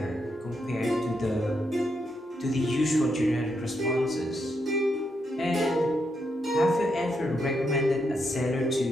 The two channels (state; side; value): normal; both; correlation 0.81